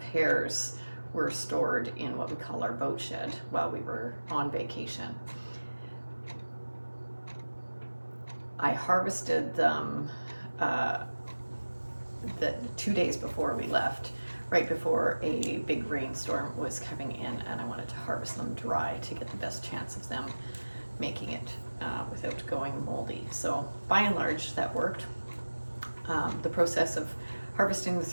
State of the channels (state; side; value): inverted; both; correlation -1.00